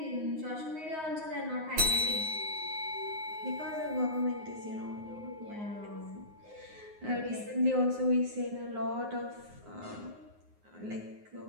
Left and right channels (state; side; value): late; left; 9.6 ms